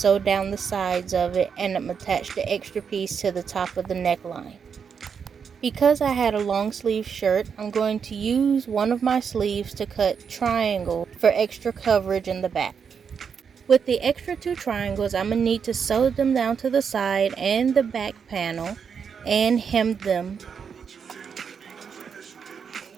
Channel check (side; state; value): left; quieter; 6.6 dB